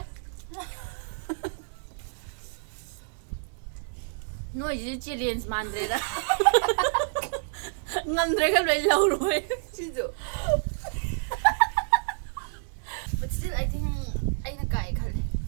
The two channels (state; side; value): silent; left; 59 dB below the other